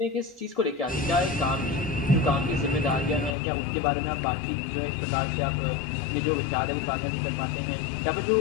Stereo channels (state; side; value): drops out; right; at 3.4 s